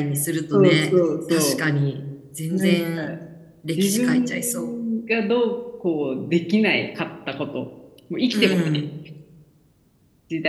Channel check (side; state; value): both; identical; correlation 1.00